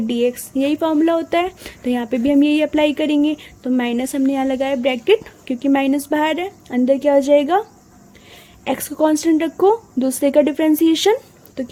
x, यही फॉर्मूला होता है। तो यहाँ पे भी हम यही अप्लाई करेंगे। तो माइनस हमने यहाँ लगाया ब्रैकेट, क्योंकि माइनस बाहर है, अंदर क्या हो जाएगा? एक्स को कांस्टेंट रखो, दूसरे का डिफ्रेंसिएशन, तो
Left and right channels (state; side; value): identical; both; correlation 1.00